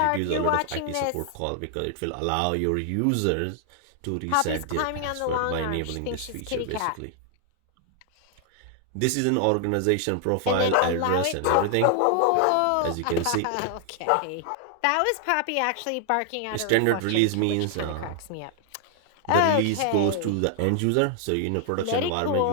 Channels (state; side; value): different; both; correlation 0.00